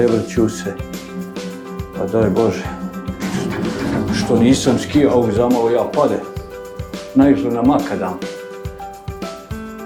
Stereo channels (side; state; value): both; identical; correlation 1.00